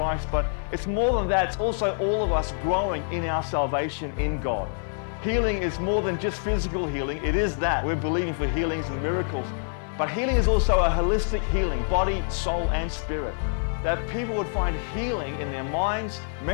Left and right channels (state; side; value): silent; right; 59 dB below the other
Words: but it's more than that. It's also all of us growing in our salvation in God. Healing is more than just physical healing. It is that. We're believing for healings and miracles. But healing is also a holistic healing, body, soul, and spirit. That people would find healing in their minds,